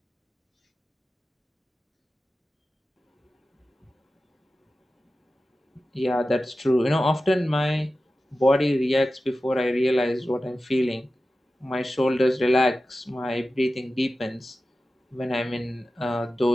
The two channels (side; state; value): both; normal; correlation 0.94